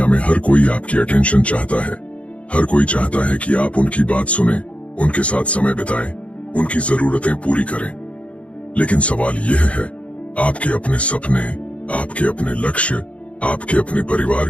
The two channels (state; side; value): late; right; 0.063 ms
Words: में हर कोई आपकी अटेंशन चाहता है। हर कोई चाहता है कि आप उनकी बात सुने, उनके साथ समय बिताएं, उनकी जरूरतें पूरी करें। लेकिन सवाल यह है, आपके अपने सपने, आपके अपने लक्ष्य, आपके अपने परिवार